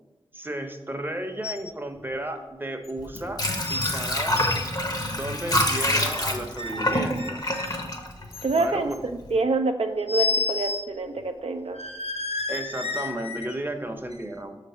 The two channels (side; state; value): both; normal; correlation 0.30